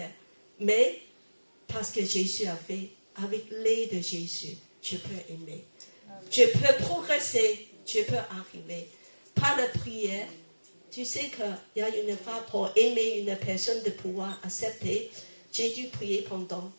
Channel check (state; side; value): inverted; both; correlation -1.00